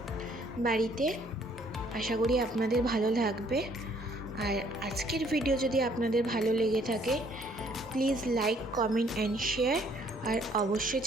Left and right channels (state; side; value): normal; both; correlation 0.63